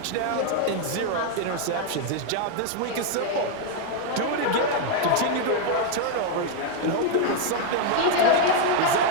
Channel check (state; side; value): different; both; correlation 0.00